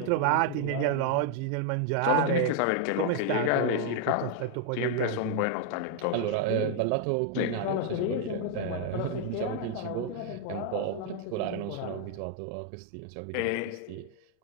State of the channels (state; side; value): different; both; correlation 0.00